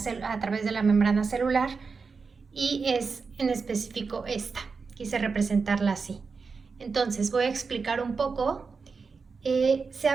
través de la membrana celular, y es en específico esta. Quise representarla así. Entonces voy a explicar un poco. Se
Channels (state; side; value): quieter; left; 4.9 dB